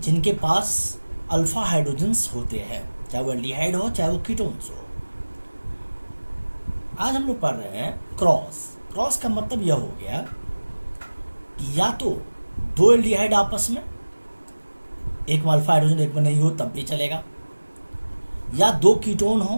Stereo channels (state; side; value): inverted; both; correlation -1.00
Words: पास अल्फा हाइड्रोजन्स होते हैं, चाहे वो एल्डिहाइड हो चाहे वो कीटोन्स हो। आज हम लोग पढ़ रहे हैं क्रॉस। क्रॉस का मतलब यह हो गया कि या तो दो एल्डिहाइड आपस में, एक में अल्फा हाइड्रोजन एक में नहीं हो तब भी चलेगा, या दो कीटोन